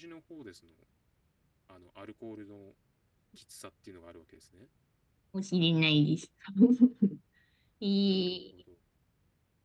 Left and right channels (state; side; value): identical; both; correlation 1.00